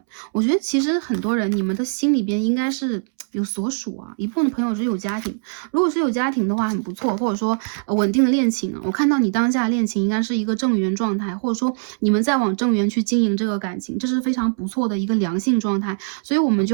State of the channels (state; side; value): silent; left; 65 dB below the other